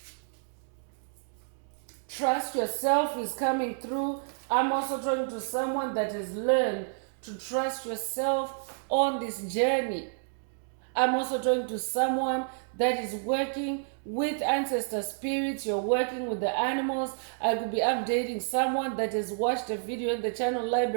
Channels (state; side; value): silent; left; digital silence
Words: Trust yourself is coming through. I'm also talking to someone that has learned to trust yourself on this journey. I'm also talking to someone that is working with ancestor spirits. You're working with the animals. I could be updating someone that has watched a video in the channel